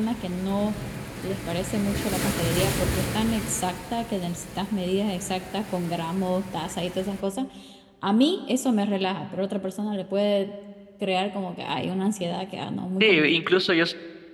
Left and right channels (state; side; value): identical; both; correlation 1.00